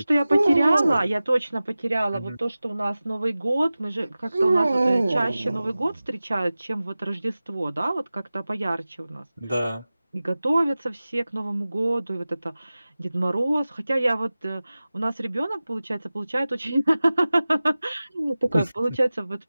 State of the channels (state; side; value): inverted; both; correlation -0.97